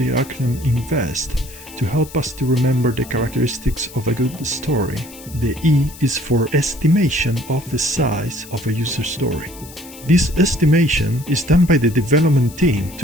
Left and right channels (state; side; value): noise; left; hiss, 18 dB below the sound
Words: acronym INVEST, to help us to remember the characteristics of a good story, the E is for estimation of the size of a user story. This estimation is done by the development team